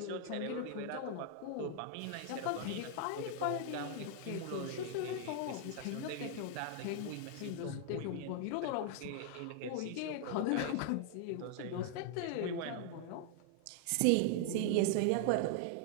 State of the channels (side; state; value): both; different; correlation 0.00